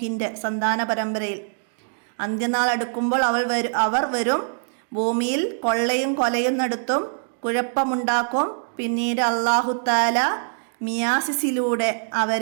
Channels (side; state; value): left; silent; digital silence